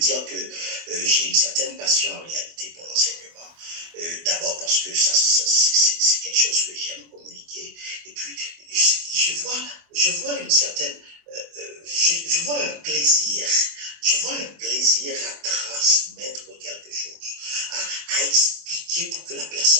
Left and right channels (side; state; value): left; late; 24 ms